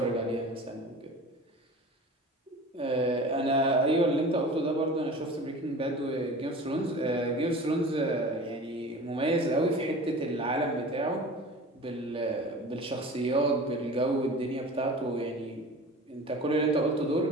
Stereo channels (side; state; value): both; normal; correlation 0.38